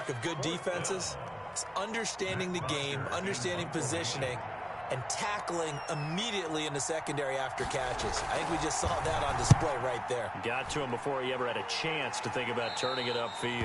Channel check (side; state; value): both; identical; correlation 1.00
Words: of good defenses is understanding the game, understanding positioning, and tackling immediately in the secondary after catches. I think we just saw that on display right there. Got to him before he ever had a chance to think about turning it